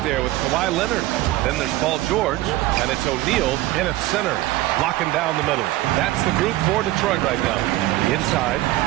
there with Kawhi Leonard. Then there's Paul George, and it's O'Neal in at center, locking down the middle. That's the group for Detroit right now. Inside,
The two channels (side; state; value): left; quieter; 16.8 dB